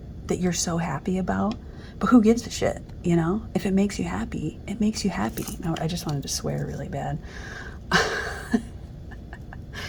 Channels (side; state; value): both; identical; correlation 1.00